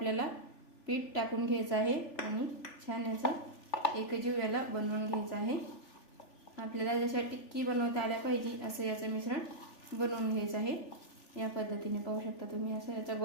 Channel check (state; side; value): late; right; 3.4 ms